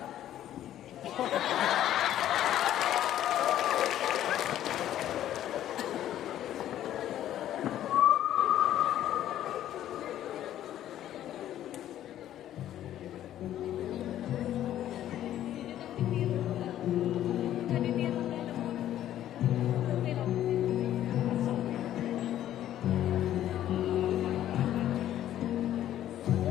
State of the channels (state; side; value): quieter; right; 12.0 dB